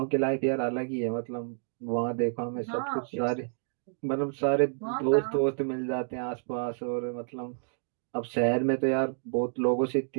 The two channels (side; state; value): left; silent; digital silence